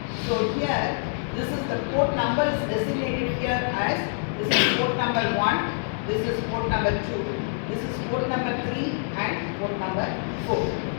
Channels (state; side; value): silent; right; 61 dB below the other